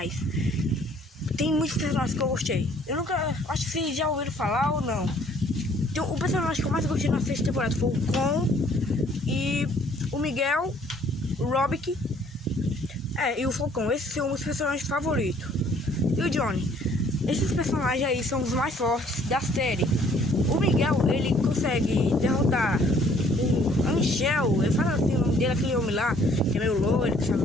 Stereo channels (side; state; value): both; normal; correlation 0.60